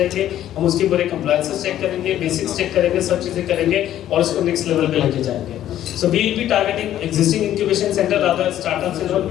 हम उसके पूरे कंप्लायंसेस चेक करेंगे, बेसिक्स चेक करेंगे, सब चीजें करेंगे और उसको नेक्स्ट लेवल पे लेके जाएंगे। So we will be targeting existing incubation center, rather startups and all.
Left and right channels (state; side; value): quieter; right; 12.0 dB